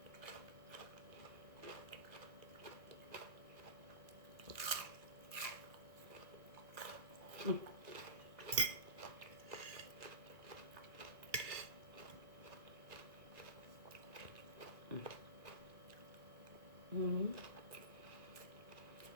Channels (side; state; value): left; late; 1.9 ms